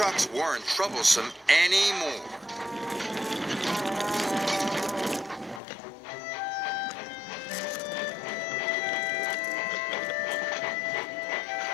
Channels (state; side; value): drops out; right; at 5.6 s